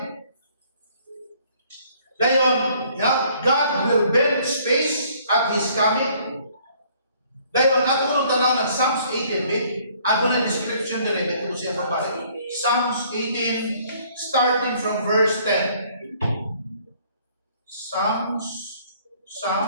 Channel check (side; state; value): both; inverted; correlation -0.60